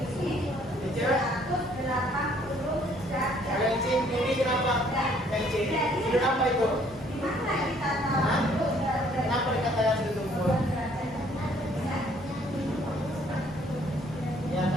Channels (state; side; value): normal; both; correlation 0.62